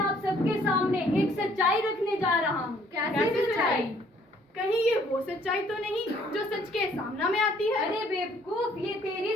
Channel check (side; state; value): both; normal; correlation 0.62